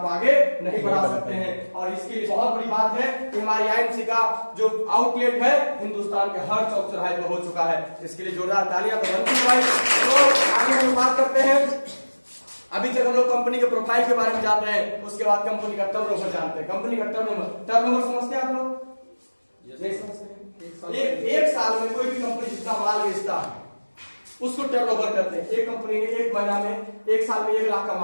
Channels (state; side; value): inverted; both; correlation -1.00